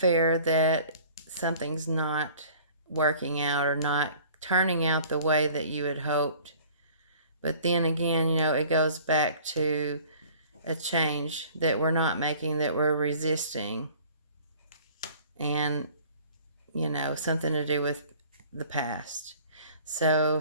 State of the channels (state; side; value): inverted; both; correlation -0.50